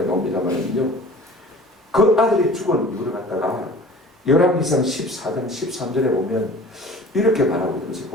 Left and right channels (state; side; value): normal; both; correlation 0.44